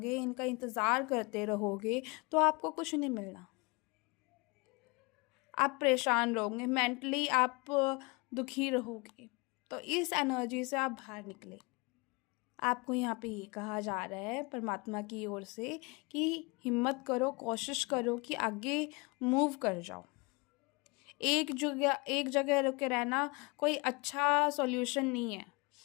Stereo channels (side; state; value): right; quieter; 28.2 dB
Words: इनका इंतज़ार करते रहोगे, तो आपको कुछ नहीं मिलना। आप परेशान रहोगे, मेंटली आप दुखी रहोगे। तो इस एनर्जी से आप बाहर निकले। आपको यहाँ पे ये कहा जा रहा है परमात्मा की ओर से कि हिम्मत करो, कोशिश करो कि आगे मूव कर जाओ। एक जगह रुके रहना कोई अच्छा सॉल्यूशन नहीं है।